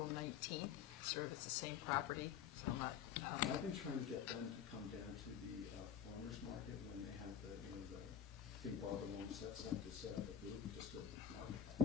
19th. Sort of, it's the same property, so I'm not. I've been trying to get them to come down to the farmers market when they have the thing Barbara Long sets up to set up a booth just to market.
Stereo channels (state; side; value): quieter; right; 8.3 dB